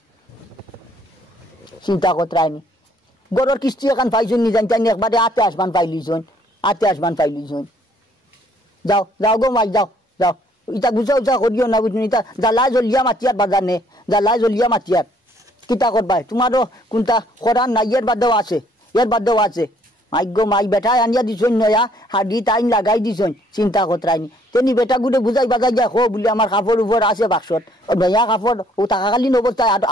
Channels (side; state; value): both; normal; correlation 0.63